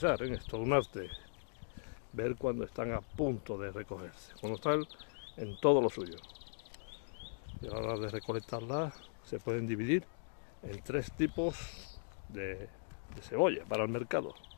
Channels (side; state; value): right; silent; digital silence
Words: ¿eh? Es todo un arte ver cuando están a punto de recogerse, cuando están en todo lo suyo. Y a la hora de recolectarlas se pueden dividir en 3 tipos de cebolla para el mercado,